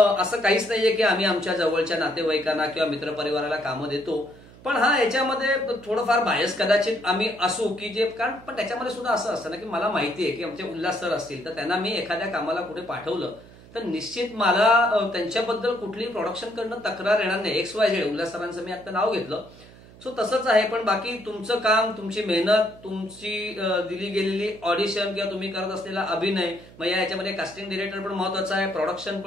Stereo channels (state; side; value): noise; right; hum, 21 dB below the sound